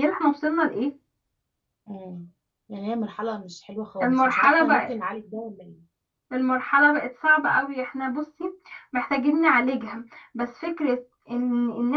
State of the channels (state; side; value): identical; both; correlation 1.00